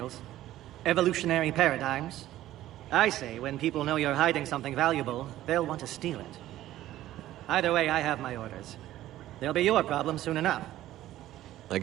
Evolutionary paradigms. I say when people know you're hiding something valuable, they'll want to steal it. Either way, I have my orders. They'll be your problem soon enough. I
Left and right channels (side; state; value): left; quieter; 14.2 dB